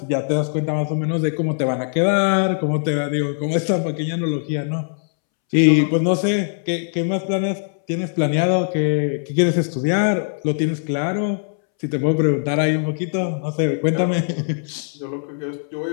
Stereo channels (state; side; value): silent; right; 65 dB below the other